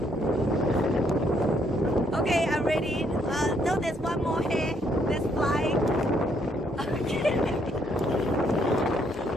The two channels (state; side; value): normal; both; correlation 0.70